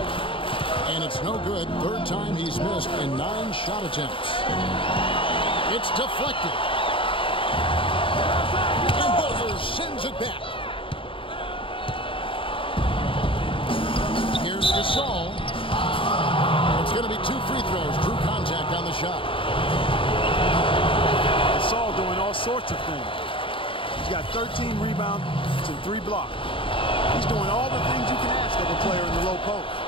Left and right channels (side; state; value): right; late; 0.25 ms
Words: And it's no good. Third time he's missed in 9 shot attempts. It's deflected. And Butler sends it back. Here's Gasol. It's going to be 2 free throws. Drew contact on the shot. Gasol doing all sorts of things. He's got 13 rebounds and 3 blocks. He's doing all the things you can ask of a player in the low post.